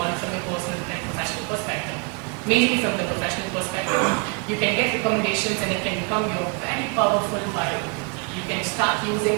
from a personal and professional perspective. Mainly from the professional perspective, you can get recommendations and it can become your very powerful bio. You can start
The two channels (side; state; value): left; quieter; 34.2 dB